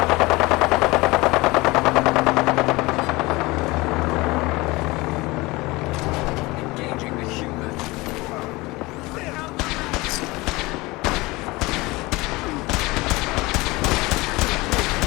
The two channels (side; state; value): right; quieter; 22.2 dB